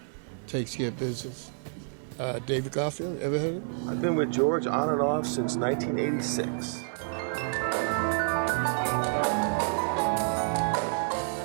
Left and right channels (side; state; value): left; silent; 59 dB below the other